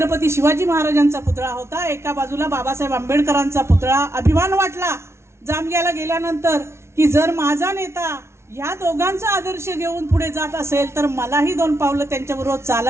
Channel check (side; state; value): left; late; 0.13 ms